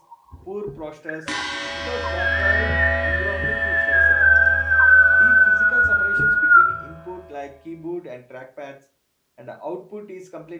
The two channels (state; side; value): identical; both; correlation 1.00